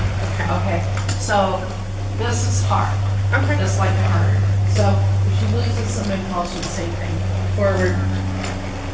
Okay. Okay, so this is hard. Okay. Just like the harder. So if she loses some impulsion, same thing. Forward,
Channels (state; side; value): identical; both; correlation 1.00